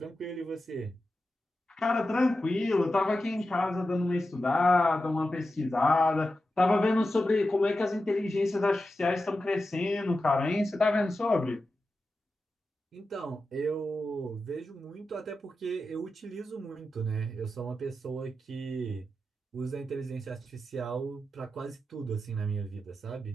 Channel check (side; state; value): both; normal; correlation 0.91